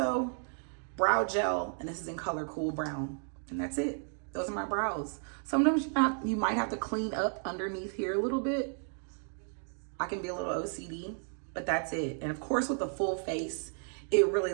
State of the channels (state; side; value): silent; left; 56 dB below the other